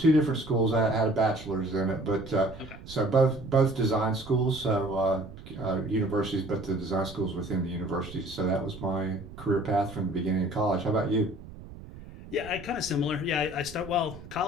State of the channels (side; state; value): right; noise; rumble, 16 dB below the sound